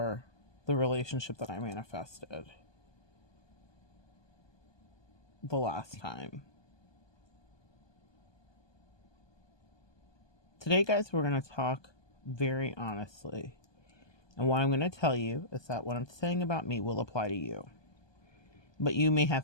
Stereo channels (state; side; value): late; right; 1.2 ms